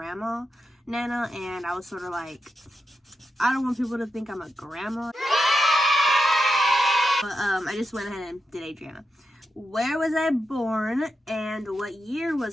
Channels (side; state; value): both; normal; correlation 0.87